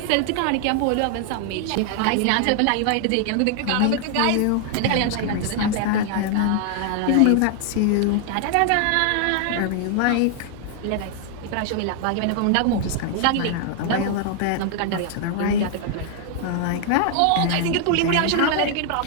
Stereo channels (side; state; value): both; different; correlation 0.00